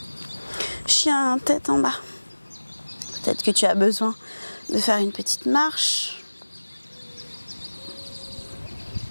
Chien, tête en bas. Peut-être que tu as besoin de faire une petite marche.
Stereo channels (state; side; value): inverted; both; correlation -1.00